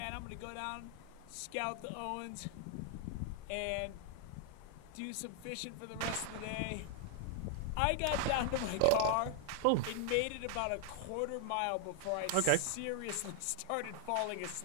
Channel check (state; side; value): different; both; correlation 0.00